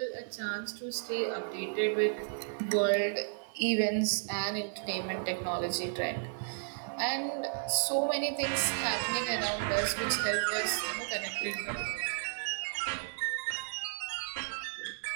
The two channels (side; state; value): left; silent; digital silence